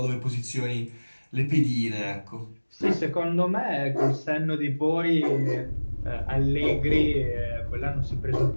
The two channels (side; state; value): both; inverted; correlation -1.00